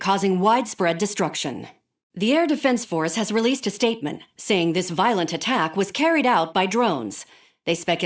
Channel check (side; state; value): both; identical; correlation 1.00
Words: widespread destruction. The Air Defense Force has released a statement saying this violent attack was carried out by drones. They